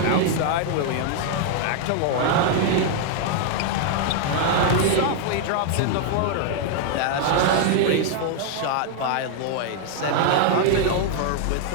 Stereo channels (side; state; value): both; different; correlation 0.00